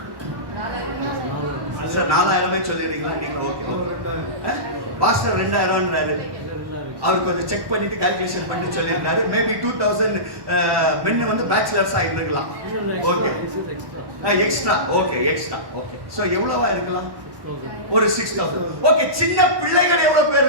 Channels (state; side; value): late; left; 1.1 ms